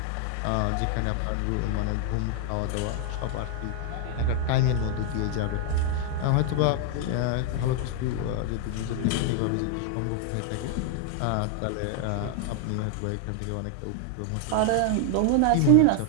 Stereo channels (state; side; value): different; both; correlation 0.00